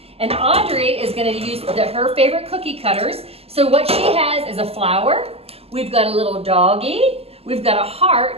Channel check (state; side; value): late; left; 0.29 ms